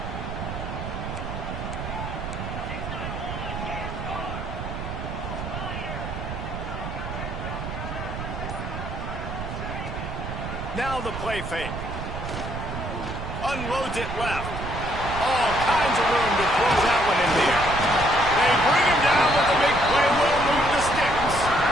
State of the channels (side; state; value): right; noise; rumble, 6 dB below the sound